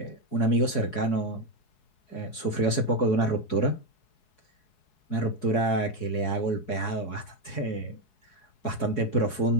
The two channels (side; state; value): right; late; 4.7 ms